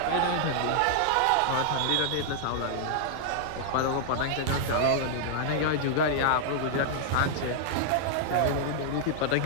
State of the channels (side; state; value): both; different; correlation -0.01